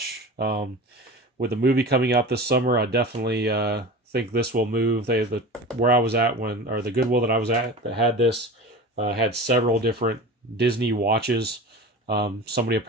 With the movie coming out this summer, I definitely think this will move. Where I was at the Goodwill that I was at that had this, had several different Disney watches. Somebody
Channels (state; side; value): normal; both; correlation 0.32